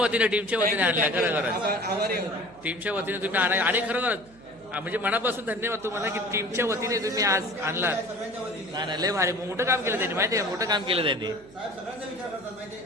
आणल्या खरं खरं टीमच्या वतीने तुम्ही आणा आणि खरं खरंच म्हणजे मनापासून धन्यवाद तुम्हाला की टीमच्या वतीने तुम्ही आज आणलात नाही नाही लय भारी मोठं काम केलं त्यांनी माहिती आहे मोठं काम केलं त्यांनी नाही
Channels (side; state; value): right; noise; hum, 24 dB below the sound